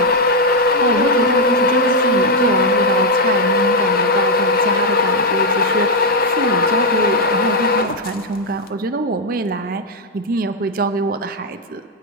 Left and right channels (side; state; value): both; normal; correlation 0.00